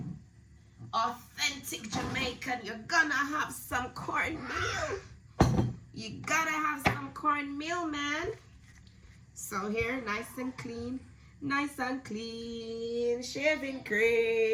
authentic Jamaican, you're gonna have some cornmeal. You gotta have some cornmeal, man. So here, nice and clean, shaving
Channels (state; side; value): identical; both; correlation 1.00